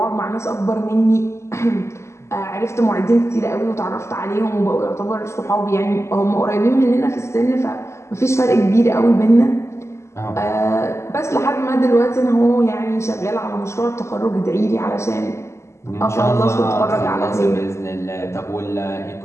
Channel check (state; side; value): late; right; 0.13 ms